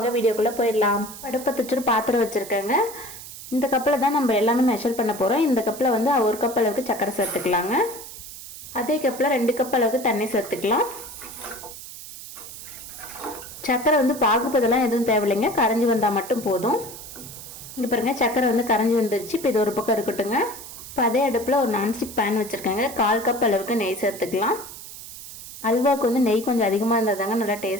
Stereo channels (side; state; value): right; noise; hiss, 13 dB below the sound